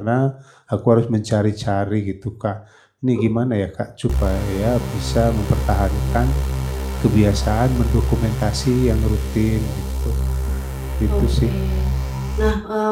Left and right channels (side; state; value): both; identical; correlation 1.00